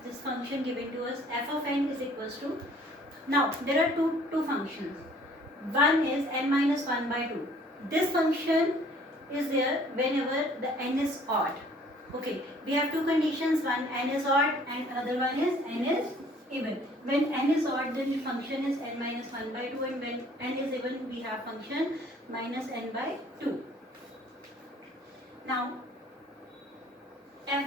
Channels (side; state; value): both; normal; correlation 0.56